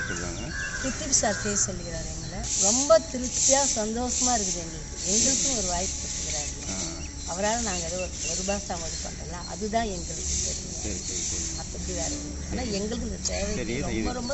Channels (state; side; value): identical; both; correlation 1.00